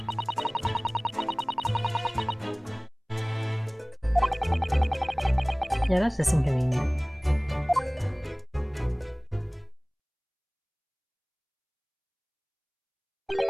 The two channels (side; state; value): both; identical; correlation 1.00